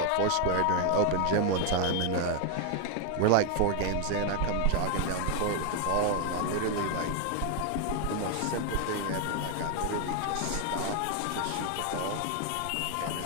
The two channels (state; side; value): different; both; correlation 0.01